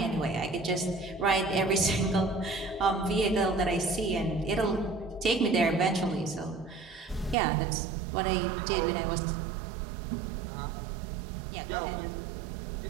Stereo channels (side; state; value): left; drops out; at 7.4 s